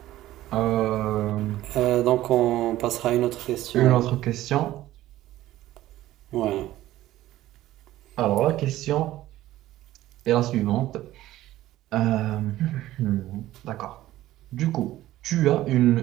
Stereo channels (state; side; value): quieter; left; 15.0 dB